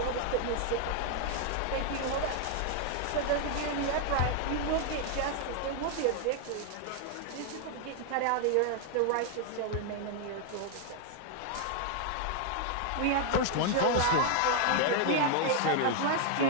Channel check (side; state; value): both; different; correlation 0.00